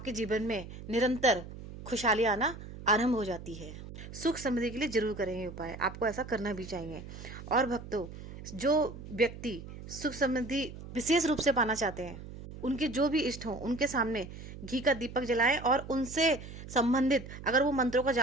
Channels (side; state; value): right; noise; hum, 13 dB below the sound